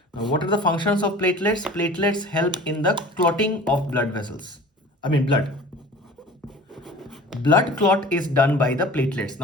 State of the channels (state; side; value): normal; both; correlation 0.42